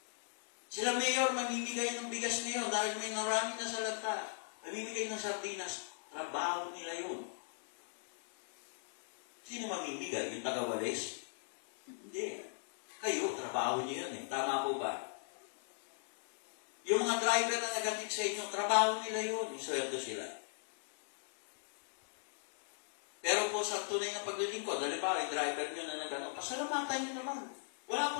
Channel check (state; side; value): silent; right; 53 dB below the other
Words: Sila mayor, mamimigay ng bigas ngayon dahil may narami na sa lata. Mamimigay ng sardinas. Trabaho nila yun. Sino mamimigay? Yung taga-walis? Hindi. Kayo, trabaho niyo yun eh. Tama po ba? Yung mga mga driver na nag-atid sa inyo, trabaho nila yun, isweldo sila. Pero po sa tunay na paglilingkod, halimbawa yung driver nyo na nag-ano, pasalamatan nyo naman. Wala